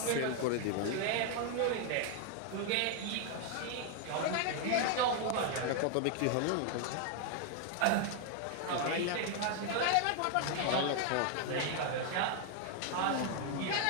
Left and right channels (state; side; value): different; both; correlation 0.00